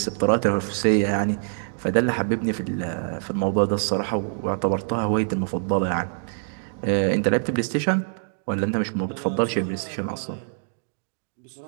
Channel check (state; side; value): silent; left; digital silence